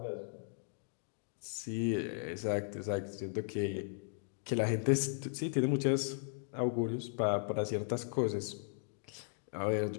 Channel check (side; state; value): right; silent; digital silence